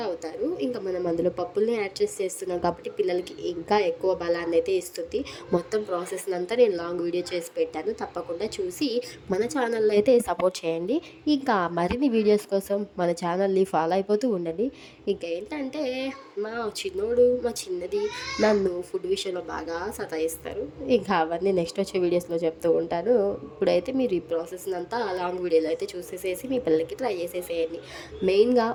అవుతారు. ఇంకా మనం అందులో పప్పుల్ని యాడ్ చేసి చేస్తున్నాం కాబట్టి పిల్లలకి ఇంకా ఎక్కువ బలాన్నయితే ఇస్తుంది. మొత్తం ప్రాసెస్‌నంతా నేను లాంగ్ వీడియో చేసి పెట్టాను. తప్పకుండా చూసి మన ఛానల్‌ని అయితే సపోర్ట్ చేయండి. ఇంకా మరిన్ని వీడియోస్ కోసం మన ఛానల్‌ని ఫాలో అయిపోతూ ఉండండి. ఇంకేంటంటే మా చిన్నది నన్ను ఫుడ్ విషయంలో బాగా సతాయిస్తారు. ఇంకా అవన్నీ నెక్స్ట్ వచ్చే వీడియోస్‌లో చెప్తూ ఉంటాను. ఇప్పుడైతే మీరు ఈ ప్రాసెస్‌నంతా లాంగ్ వీడియోలో అయితే చూసేసేసి మీ పిల్లలకి ట్రై చేసేసేయండి. మెయిన్‌గా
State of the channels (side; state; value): both; identical; correlation 1.00